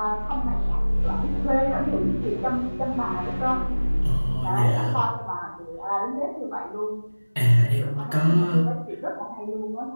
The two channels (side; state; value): both; inverted; correlation -1.00